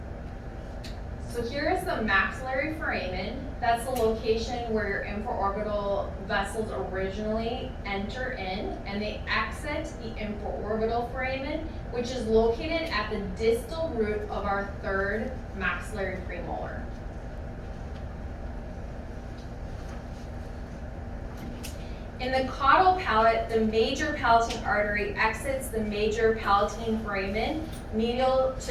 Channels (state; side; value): identical; both; correlation 1.00